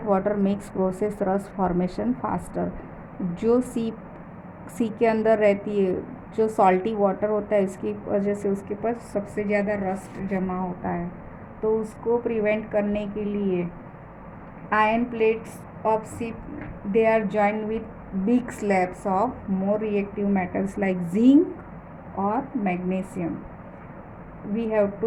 water makes process rust formation faster. जो सी के अंदर रहती है, जो salty water होता है, इसकी वजह से उसके पास सबसे ज़्यादा रस्ट जमा होता है. तो उसको प्रिवेंट करने के लिए iron plates of ship they are joined with big slabs of more reactive metals like zinc और magnesium. We have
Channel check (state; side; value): identical; both; correlation 1.00